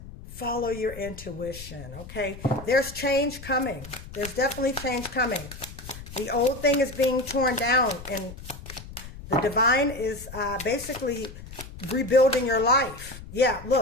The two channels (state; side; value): noise; left; rumble, 14 dB below the sound